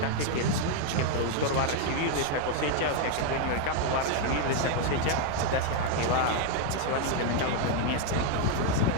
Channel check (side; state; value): both; different; correlation 0.00